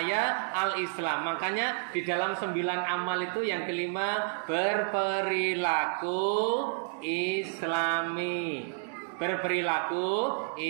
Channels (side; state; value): left; silent; digital silence